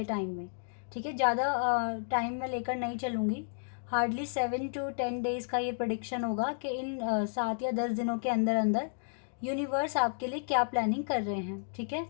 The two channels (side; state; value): right; silent; digital silence